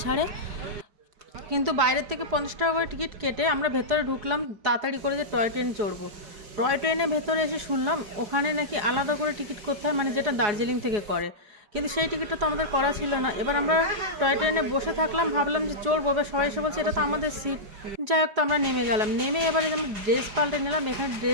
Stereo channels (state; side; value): late; left; 4.8 ms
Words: ছাড়ে। কিন্তু বাইরের থেকে 50 টাকা করে টিকিট কেটে আমরা ভেতরে ঢুকলাম তাড়াতাড়ি করে যে টয় ট্রেন চড়বো। টয় ট্রেনে ভেতরে এসে শুনলাম ওখানে নাকি আলাদা করে টিকিট করতে হয়, মানে যেটা দার্জিলিং থেকে করে, কিন্তু সেই টিকিটটা তো আমাদের করা ছিল না। এবার আমরা টয় ট্রেনে বসে থাকলাম, ভাবলাম যে চড়বো, এবার সবাই এসে বলছে এটা তো আমাদের সিট। যাই হোক, তো আমরা নেমে গেলাম। নেমে এবারে আমরা ড্রেস পাল্টে নিলাম। এখানে